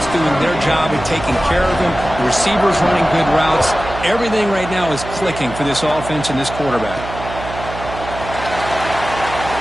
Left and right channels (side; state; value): right; noise; hum, 10 dB below the sound